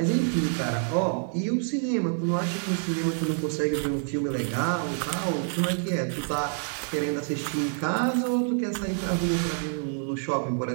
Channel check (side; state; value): left; silent; 59 dB below the other